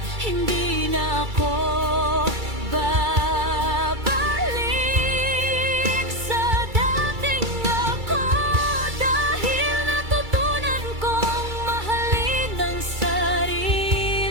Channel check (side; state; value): left; late; 2.3 ms